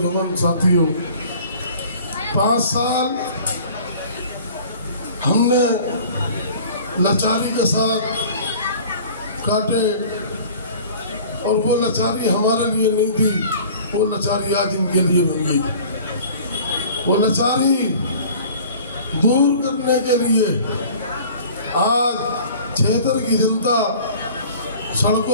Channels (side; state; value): both; inverted; correlation -0.46